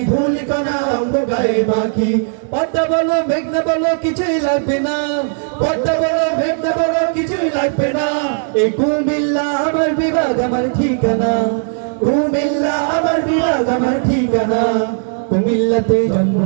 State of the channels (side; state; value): left; silent; digital silence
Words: ধুলিকণা অঙ্গ গায়ে মাখি। পদ্মা বলো মেঘনা বলো কিছুই লাগবে না, পদ্মা বলো মেঘনা বলো কিছুই লাগবে না, এই কুমিল্লা আমার বিভাগ আমার ঠিকানা, কুমিল্লা আমার বিভাগ আমার ঠিকানা। কুমিল্লাতে জন্ম